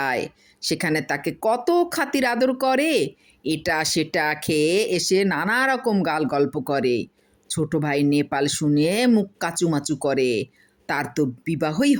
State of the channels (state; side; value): identical; both; correlation 1.00